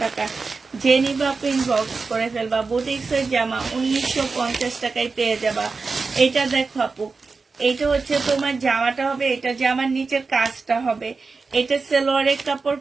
টাকা। যে নিবা ইনবক্স করে ফেলবা। বুটিক্সের জামা 1950 টাকায় পেয়ে যাবা। এটা দেখো আপু, এইটা হচ্ছে তোমার জামাটা হবে, এটা জামার নিচের কাজটা হবে, এটা সেলোয়ারের কাপড়,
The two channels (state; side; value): quieter; left; 4.4 dB